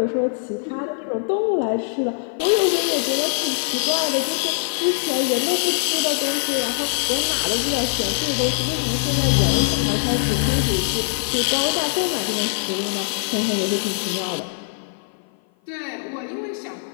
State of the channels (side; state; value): right; silent; 55 dB below the other